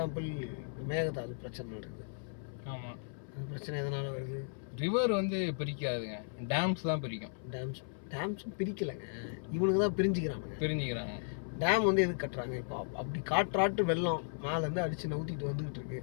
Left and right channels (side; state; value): right; silent; 54 dB below the other